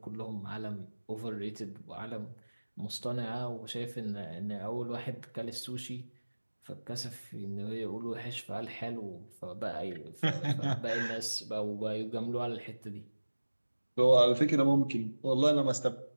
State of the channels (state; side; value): inverted; both; correlation -1.00